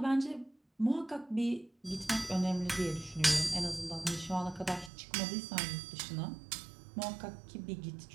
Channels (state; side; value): drops out; left; at 4.9 s